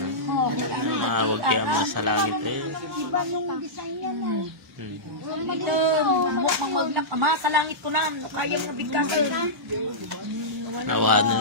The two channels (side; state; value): both; normal; correlation -0.15